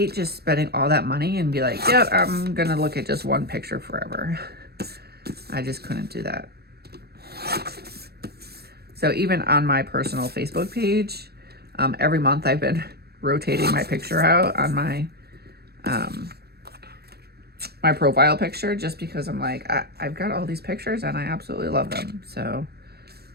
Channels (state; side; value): late; left; 0.47 ms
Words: just spending all that money and be like, yep, I'm going to look at just one picture forever. I just couldn't do that. So even on my personal Facebook page, every month I've been rotating my picture out on my my profile picture, just because I'm like, I've got all these pictures and I absolutely love them. So